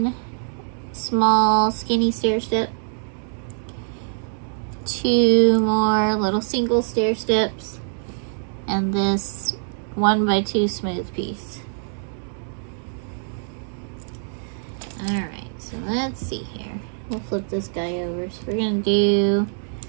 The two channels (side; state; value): left; silent; digital silence